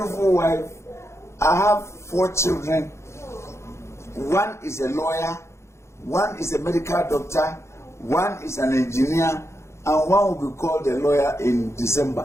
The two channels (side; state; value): right; late; 0.13 ms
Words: wife. I have 4 children. One is a lawyer, one is a medical doctor, one is an engineer, and one will be called a lawyer in